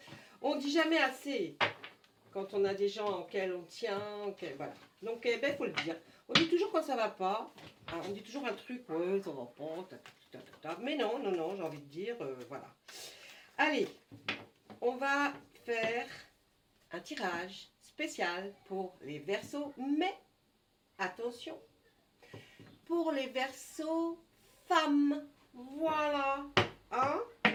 On ne dit jamais assez quand on a des gens auxquels on tient, voilà. Donc, il faut le dire. On dit toujours quand ça va pas, hein, on dit toujours un truc, ouais, ça va pas, mais non, j'ai envie de dire, voilà. Allez, on va faire un tirage spécial pour les Verseaux, mais attention, pour les Verseaux femmes, voilà, hein,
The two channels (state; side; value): identical; both; correlation 1.00